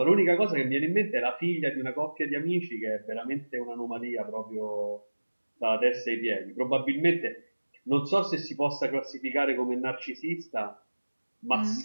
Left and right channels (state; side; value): inverted; both; correlation -1.00